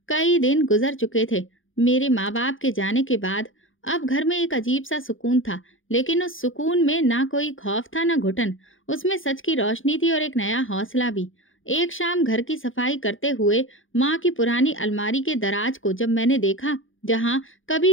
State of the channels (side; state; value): right; late; 0.58 ms